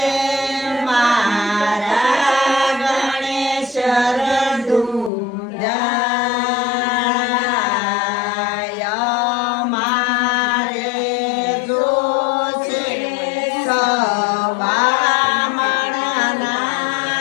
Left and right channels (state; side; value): drops out; right; at 5.1 s